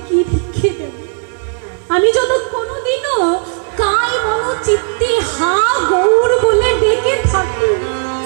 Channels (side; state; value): left; silent; 57 dB below the other